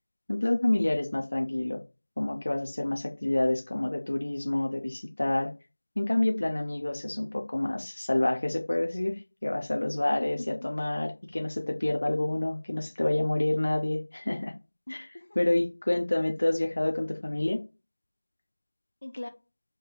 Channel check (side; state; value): both; inverted; correlation -1.00